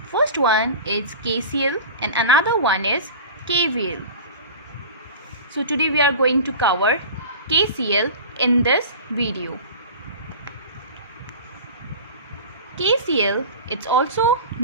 First one is KCL and another one is KVL. So today we are going to cover KCL in this video. KCL, it's also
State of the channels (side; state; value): both; inverted; correlation -0.35